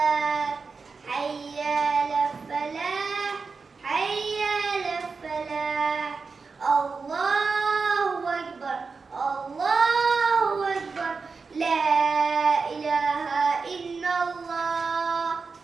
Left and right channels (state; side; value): quieter; left; 4.7 dB